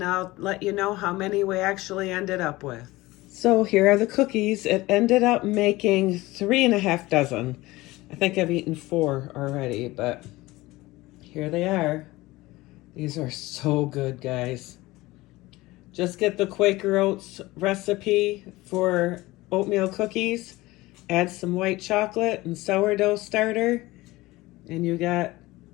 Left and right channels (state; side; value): quieter; right; 19.7 dB